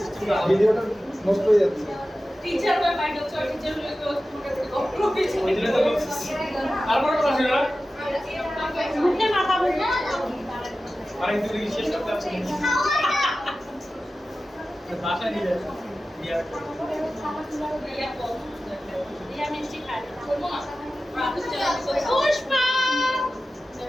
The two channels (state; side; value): normal; both; correlation 0.94